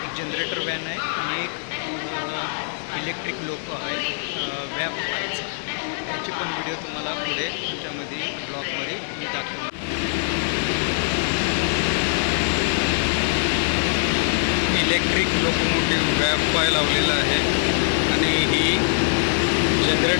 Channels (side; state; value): right; silent; digital silence